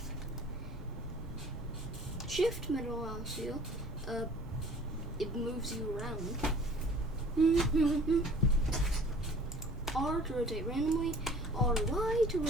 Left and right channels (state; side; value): normal; both; correlation 0.49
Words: Shift middle mouse wheel. It moves you around. R to rotate randomly. RY to